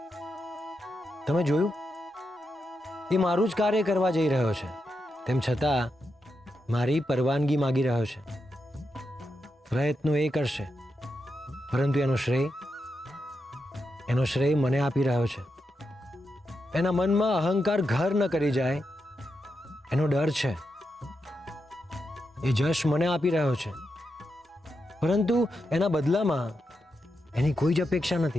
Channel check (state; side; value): normal; both; correlation 0.86